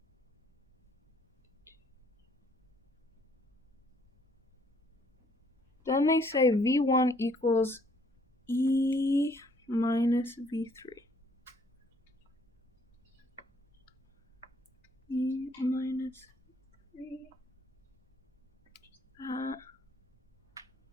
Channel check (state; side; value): normal; both; correlation 0.64